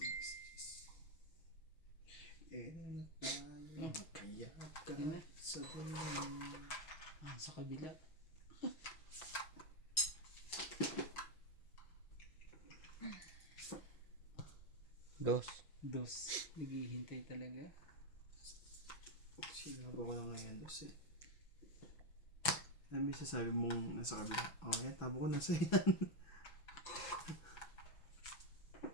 Na tayo, kaya ka sa dulo. Sa kabila. Dos. Naghihintay talaga. Sinaba ko lang ngayon, Diyos eh. Ano may sasabi mong nasa kabila? Oh, yan, tabo ko nasa yan.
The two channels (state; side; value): late; right; 6.1 ms